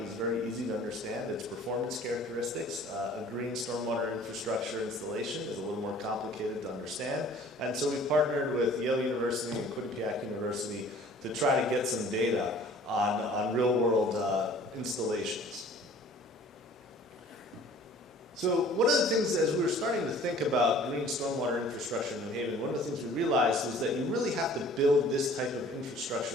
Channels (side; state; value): both; normal; correlation 0.50